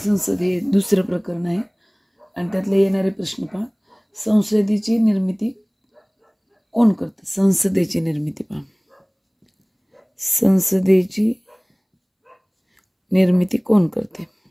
हे दुसरं प्रकरण आहे आणि त्यातले येणारे प्रश्न पहा. संसदेची निर्मिती कोण करते? संसदेची निर्मिती पहा. संसदेची निर्मिती कोण करते?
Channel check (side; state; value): both; identical; correlation 1.00